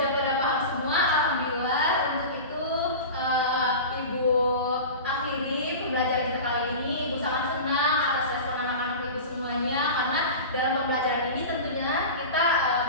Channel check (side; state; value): both; inverted; correlation -0.31